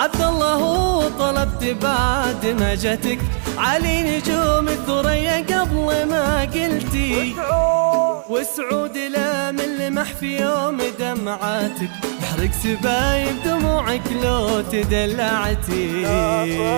الله طلبت بعد ما جاتك، علي نجوم الثريا قبل ما قلتي. وسعود لا من لمح في يوم دمعاتك، يحرق سبايب دموعك لو تدلعتي.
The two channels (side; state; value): left; silent; digital silence